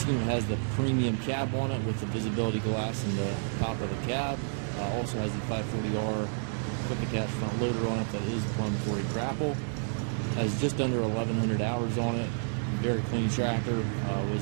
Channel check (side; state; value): left; silent; 58 dB below the other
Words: unit has the premium cab on it with the visibility glass in the top of the cab. Also has the 540R quick attach front loader on it that is plumbed for a Grapple. Has just under 1,100 hours on it. Very clean tractor.